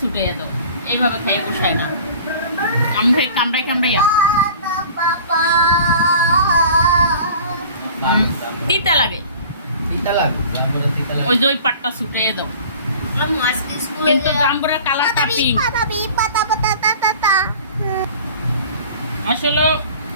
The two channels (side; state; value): both; inverted; correlation -0.44